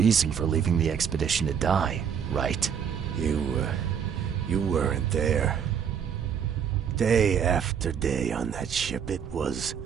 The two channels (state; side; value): quieter; left; 7.7 dB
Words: for leaving the expedition to die, right? You weren't there. Day after day on that ship, it was